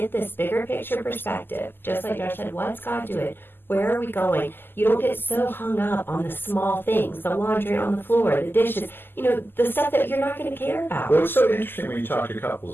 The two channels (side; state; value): right; late; 0.097 ms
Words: this bigger picture perspective, just like Josh said, what's God doing? Where are we going? You don't get so hung up on the small things, the laundry on the floor, the dishes, the stuff that you're not going to care about. Well, what's so interesting when you talk to